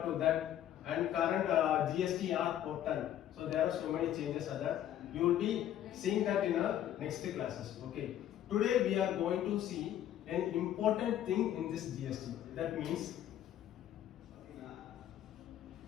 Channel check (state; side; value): quieter; right; 11.3 dB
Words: to that and current GSTR portal. So there are so many changes are there. You will be seeing that in our next classes. Okay. Today we are going to see an important thing in this GST. That means